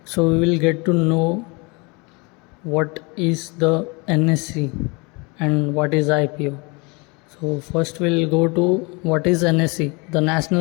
So we will get to know what is the NSE and what is IPO. So first we'll go to what is NSE. The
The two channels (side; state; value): right; quieter; 28.7 dB